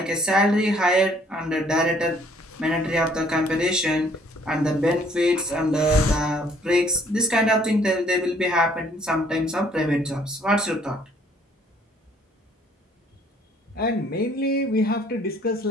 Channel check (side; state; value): both; normal; correlation 0.61